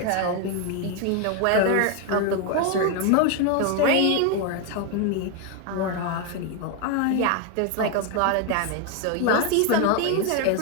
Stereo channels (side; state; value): both; different; correlation 0.01